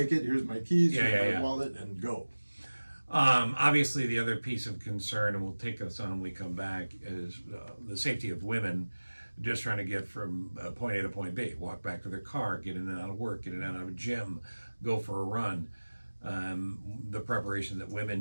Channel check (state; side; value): inverted; both; correlation -1.00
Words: it, here's my keys, here's my yeah. wallet, and go. Obviously, the other piece of concern, and we'll take us on when we come back, is the safety of women just trying to get from point A to point B, walk back to their car, get in and out of work, get in and out of a gym, go for a run. The preparation that